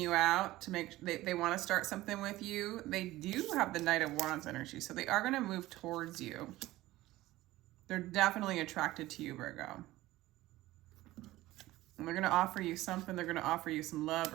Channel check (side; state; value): left; quieter; 17.1 dB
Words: out to make, they want to start something with you. They do have the Knight of Wands energy, so they are going to move towards you. They're definitely attracted to you, Virgo. And they're going to offer you something. They're going to offer you some love